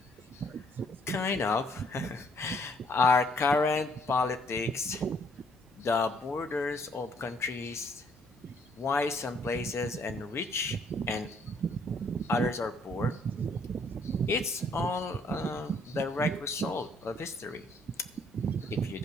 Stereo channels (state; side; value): normal; both; correlation 0.65